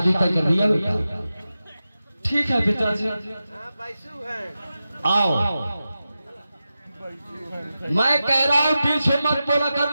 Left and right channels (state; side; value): inverted; both; correlation -0.92